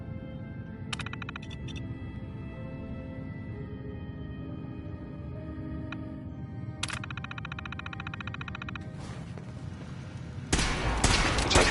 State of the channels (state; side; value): identical; both; correlation 1.00